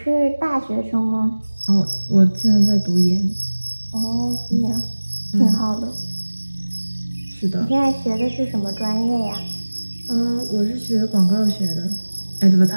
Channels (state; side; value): inverted; both; correlation -1.00